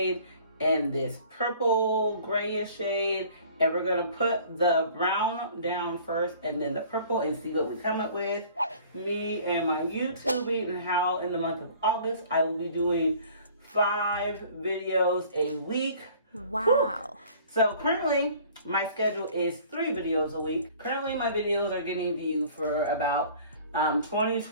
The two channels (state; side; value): inverted; both; correlation -0.50